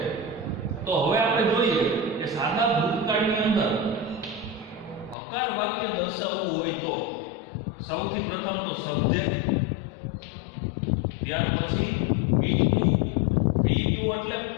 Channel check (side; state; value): right; drops out; at 5.2 s